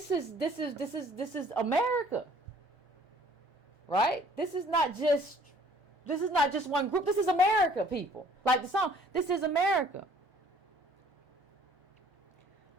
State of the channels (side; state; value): both; normal; correlation 0.56